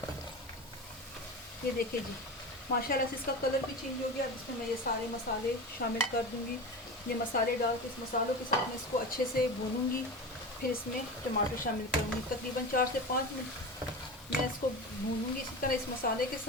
ये देखिए जी, माशाल्लाह से इसका कलर भी चेंज हो गया। अब इसमें मैं ये सारे मसाले शामिल कर दूंगी। ये मसाले डाल के इस मसालों के साथ मैं इसको अच्छे से भूनूंगी, फिर इसमें टमाटर शामिल करूंगी। तकरीबन 4 से 5 मिनट मैं इसको भूनूंगी इसी तरह इस मसाले के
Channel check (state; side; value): normal; both; correlation 0.28